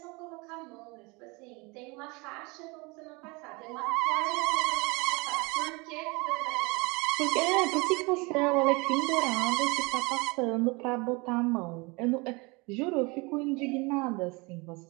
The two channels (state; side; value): quieter; left; 27.0 dB